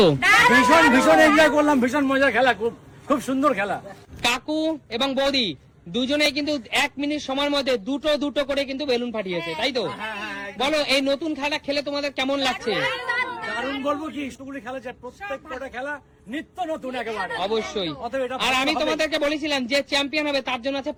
ভীষণ ভীষণ এনজয় করলাম, ভীষণ মজার খেলা, খুব খুব সুন্দর খেলা। কাকু এবং বৌদি দুজনেই কিন্তু 1 মিনিট সময়ের মধ্যে দুটো দুটো করে কিন্তু বেলুন ফাটিয়েছে, তাই তো? বলো এই নতুন খেলা খেলে তোমাদের কেমন লাগছে? কারণ বলবো কি, স্কুলে খেলা যায়, প্রত্যেকটা খেলা নিত্য নতুন একেবারে। অবশ্যই। অতএব এটা আর আমি ভালো হবে। তোমাদেরকে বলেছিলাম যে চ্যাম্পিয়ন হবে তার জন্য আছে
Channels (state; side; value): identical; both; correlation 1.00